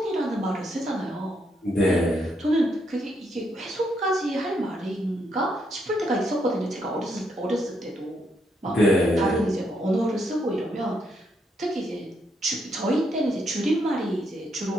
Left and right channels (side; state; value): both; normal; correlation 0.77